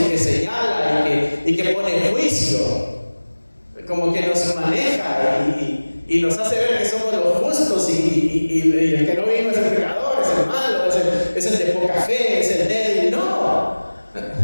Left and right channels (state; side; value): inverted; both; correlation -1.00